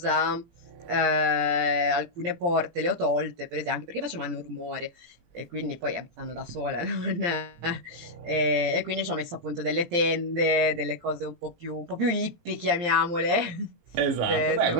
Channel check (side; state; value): left; late; 17 ms